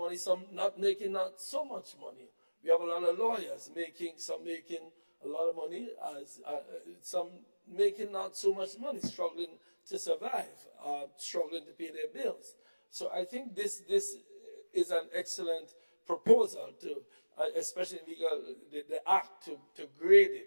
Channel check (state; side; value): inverted; both; correlation -1.00